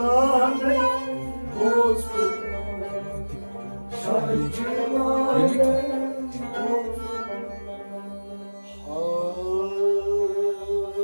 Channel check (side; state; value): both; inverted; correlation -1.00